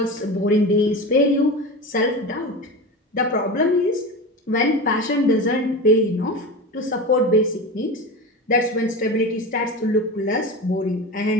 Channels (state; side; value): normal; both; correlation 0.27